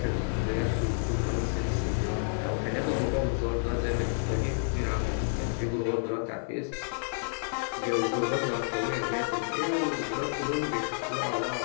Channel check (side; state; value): right; silent; digital silence